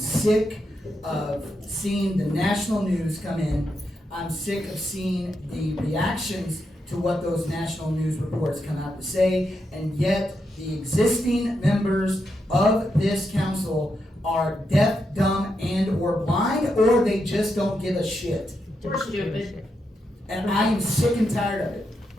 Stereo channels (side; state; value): both; normal; correlation 0.84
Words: of seeing the national news come in. I'm sick of seeing the reactions to what those national news reports come out to say, and yet the existing members of this council are deaf, dumb, and or blind, or they just don't give a shit. We're stupid. And I am sick and tired of